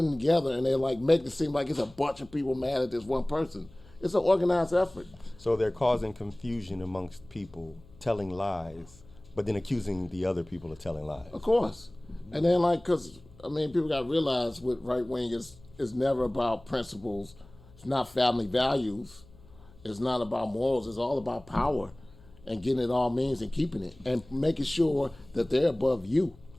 together and they like make it seem like it's a bunch of people mad at this one person. It's an organized effort. So they're causing confusion amongst people, telling lies, but then accusing the other people of telling lies. Of course, and then because people got to realize with right wing is never about principles. It's not family values. It's not about morals. It's all about power and getting it all means and keeping it and making sure that they're above you.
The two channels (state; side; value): noise; left; hum, 24 dB below the sound